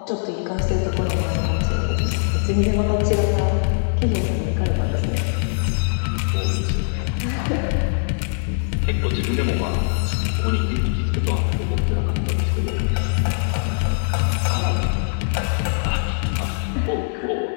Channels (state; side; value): silent; right; digital silence